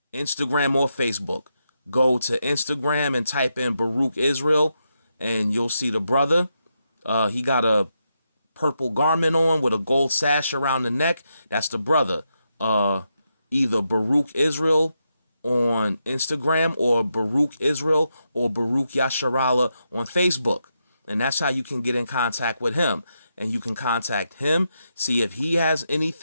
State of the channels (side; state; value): both; inverted; correlation -0.84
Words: Instagram or Facebook. Go to Instagram and type in Baruch Israel, and you'll see the brother. He got a purple garment on with a gold sash around the neck. That's the brother. Either Baruch Israel on Instagram or Baruch Israel or Baruch Yasharala on Facebook. And that's how you can get in contact with him. And you can contact him, see if he has